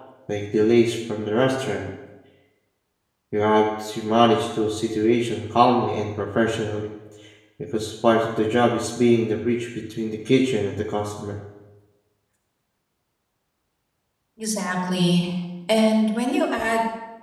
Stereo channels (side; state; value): both; identical; correlation 1.00